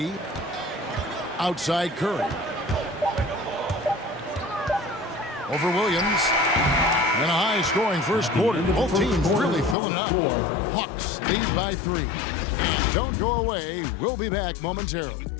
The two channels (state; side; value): drops out; right; at 9.8 s